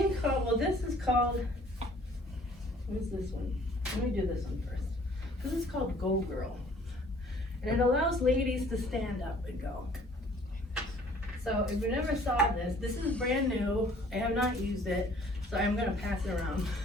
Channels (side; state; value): both; normal; correlation 0.55